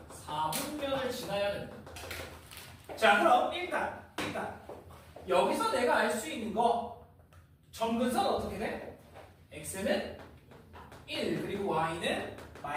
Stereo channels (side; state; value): both; identical; correlation 1.00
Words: 사분면을 지나야 된다. 자 그럼 일단 여기서 내가 알 수 있는 거 점근선 어떻게 돼? x는 1 그리고 y는